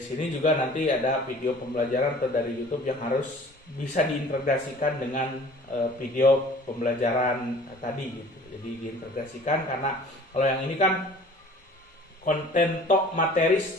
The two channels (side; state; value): both; normal; correlation 0.48